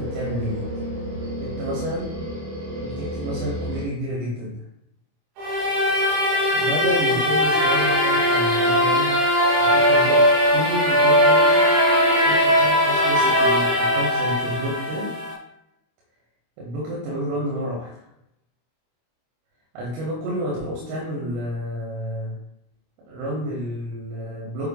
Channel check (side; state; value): left; late; 25 ms